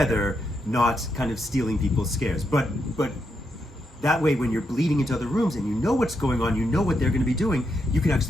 not kind of stealing people's scares. But that way, when you're bleeding into other rooms and you know what's going on, you know what they're going to be doing, you can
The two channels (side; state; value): both; normal; correlation 0.82